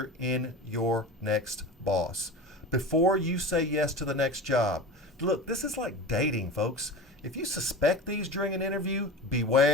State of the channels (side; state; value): both; normal; correlation 0.30